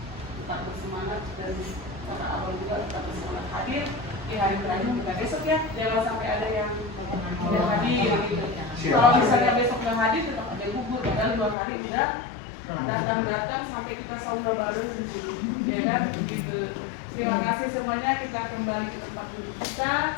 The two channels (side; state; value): right; drops out; at 11.6 s